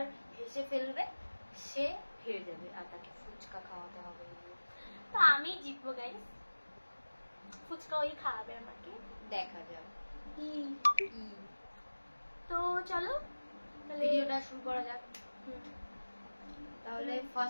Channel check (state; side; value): inverted; both; correlation -1.00